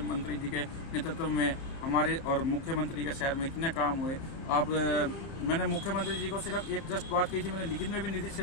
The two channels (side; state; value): right; late; 30 ms